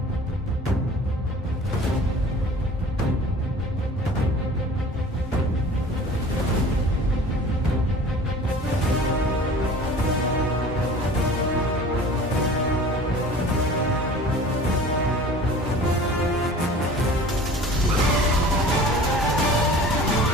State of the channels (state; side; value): normal; both; correlation 0.43